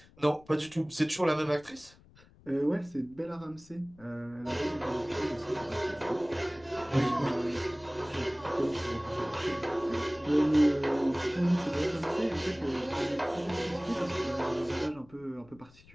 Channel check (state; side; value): noise; left; rumble, 25 dB below the sound